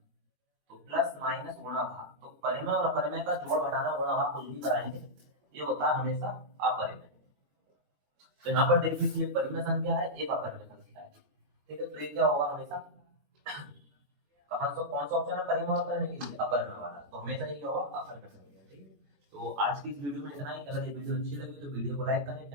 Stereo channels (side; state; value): left; late; 21 ms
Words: तो प्लस माइनस गुणा भाग, तो परिमेय और अपरिमेय का जोड़ घटाना गुणा भाग कुछ भी कराएंगे, ये होता है हमेशा अपरिमेय। तो यहाँ पर देख लीजिए, एक परिमेय संख्या है, एक अपरिमेय संख्या है। ठीक है, तो ये क्या होगा हमेशा, कौन सा ऑप्शन है परिमेय और अपरिमेय के लिए, अपरिमेय वाला, तो हमेशा ये होगा अपरिमेय संख्या। ठीक है, तो आज की इस वीडियो में इतना ही। अगर ये वीडियो अच्छी लगी तो वीडियो को लाइक करें,